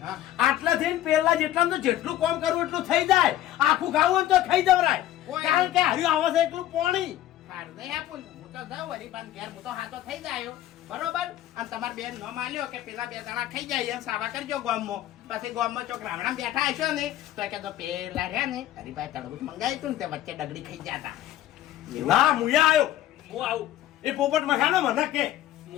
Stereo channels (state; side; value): quieter; right; 13.3 dB